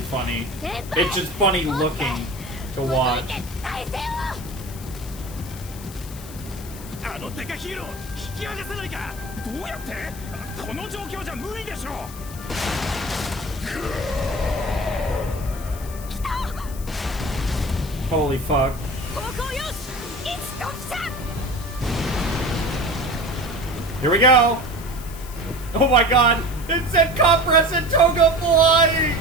It's just funny looking to watch. Holy fuck. Here we go! Oh my god! It said Compress and Toga flying!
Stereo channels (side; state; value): left; noise; hiss, 16 dB below the sound